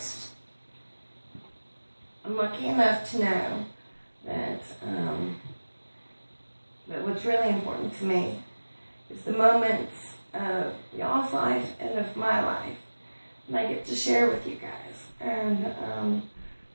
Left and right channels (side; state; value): both; inverted; correlation -1.00